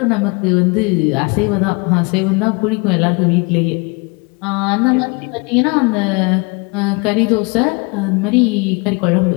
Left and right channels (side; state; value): right; quieter; 29.8 dB